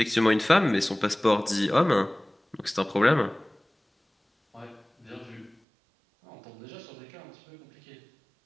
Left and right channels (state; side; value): drops out; left; at 5.6 s